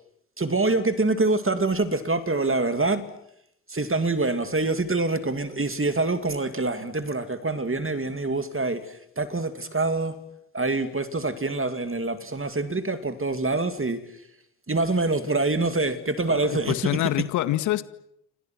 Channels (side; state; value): both; normal; correlation 0.08